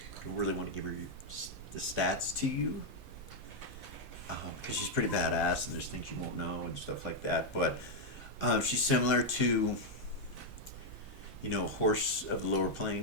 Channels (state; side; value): normal; both; correlation 0.00